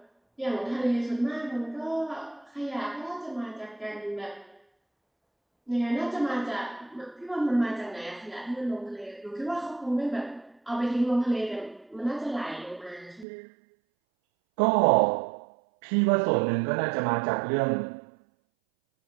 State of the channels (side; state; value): left; drops out; at 13.2 s